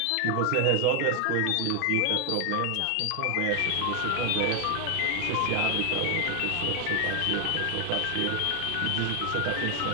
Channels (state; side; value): different; both; correlation 0.00